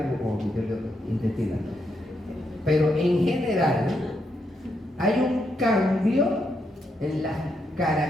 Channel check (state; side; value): normal; both; correlation 0.80